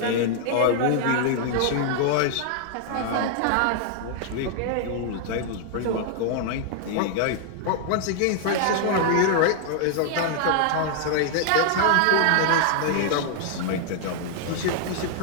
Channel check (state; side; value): different; both; correlation -0.01